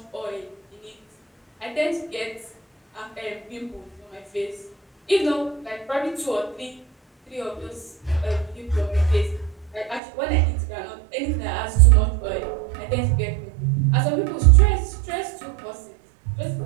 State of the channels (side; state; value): left; drops out; at 10.0 s